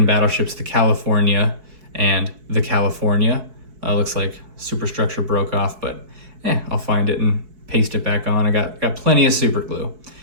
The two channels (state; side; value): late; left; 4.6 ms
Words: battleships, the California and the California. Looks like superstructure broke off, but I'll find it and paste it back on. I got plenty of super glue.